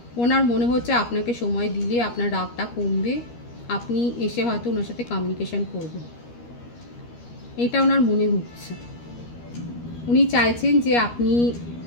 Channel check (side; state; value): right; late; 13 ms